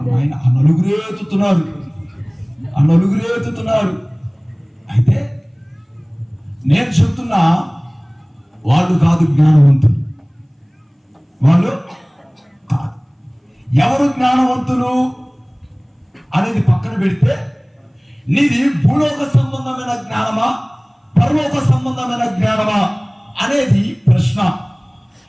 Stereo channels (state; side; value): identical; both; correlation 1.00